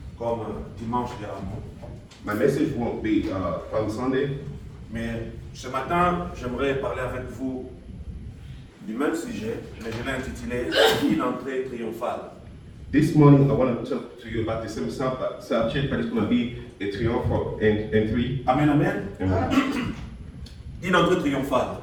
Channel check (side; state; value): both; identical; correlation 1.00